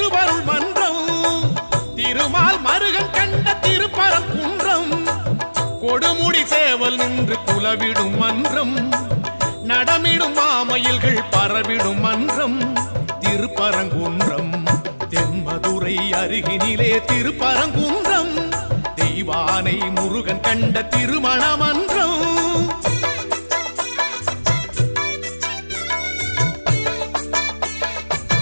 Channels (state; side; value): inverted; both; correlation -1.00